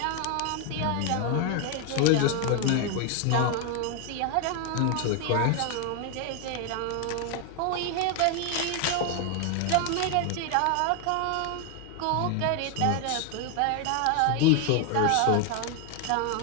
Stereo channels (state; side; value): different; both; correlation 0.01